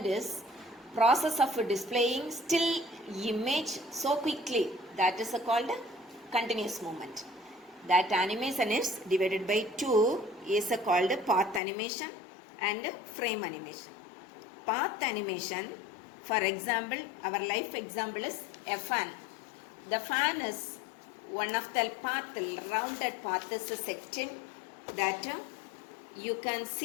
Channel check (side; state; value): right; drops out; at 11.6 s